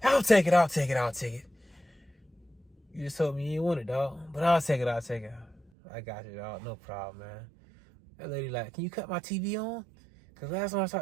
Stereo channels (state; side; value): drops out; left; at 5.7 s